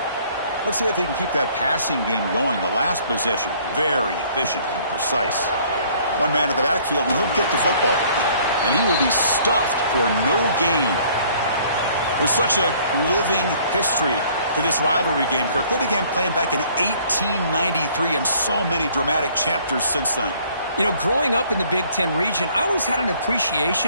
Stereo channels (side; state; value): both; inverted; correlation -0.58